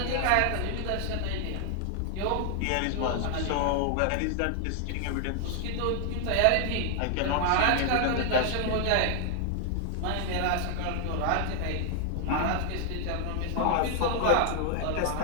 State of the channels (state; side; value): different; both; correlation 0.00